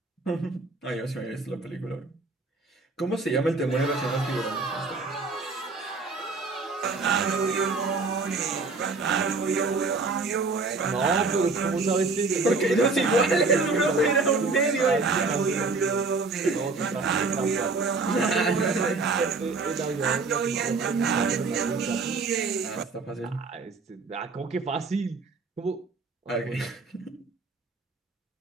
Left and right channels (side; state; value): left; quieter; 3.9 dB